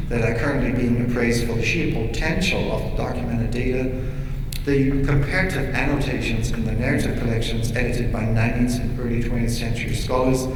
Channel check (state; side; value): identical; both; correlation 1.00